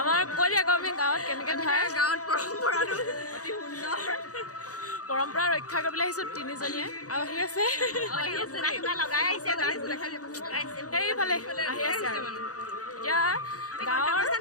কৈ দিয়া আমি গাঁৱত কেনেকৈ ধৰে গাঁৱত পৰম্পৰাটো অতি সুন্দৰ পৰম্পৰা ৰক্ষা কৰিবলৈ আহিছোঁ তিনিজনীয়ে আৰু আহি আছে লগাই আহিছে সেইফালে আহি আছে আৰু এতিয়া গাঁৱৰ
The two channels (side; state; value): right; late; 0.67 ms